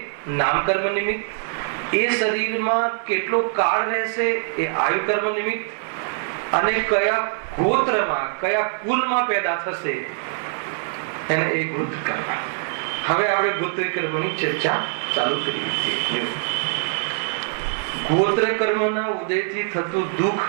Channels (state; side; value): silent; left; 56 dB below the other